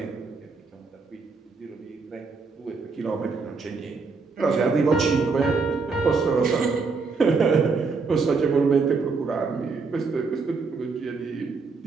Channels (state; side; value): quieter; left; 4.5 dB